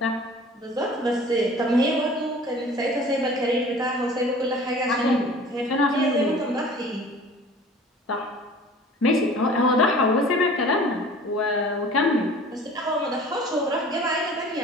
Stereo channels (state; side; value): normal; both; correlation 0.45